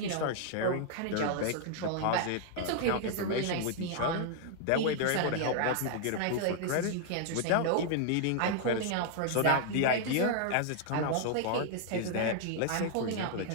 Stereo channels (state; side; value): different; both; correlation 0.00